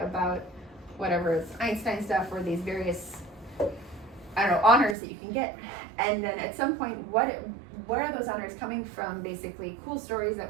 about whatever, it's Einstein stuff or these various, I don't know, honors that you can get. And then at some point, where are those honors coming from? Basically cool stories that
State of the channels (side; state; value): left; drops out; at 5.0 s